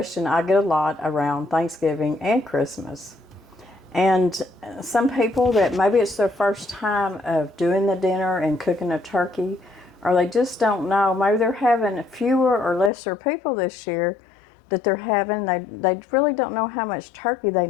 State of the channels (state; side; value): drops out; right; at 12.9 s